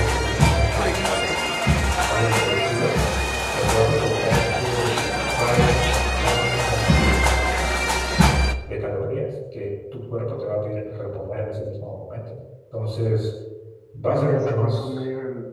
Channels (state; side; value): identical; both; correlation 1.00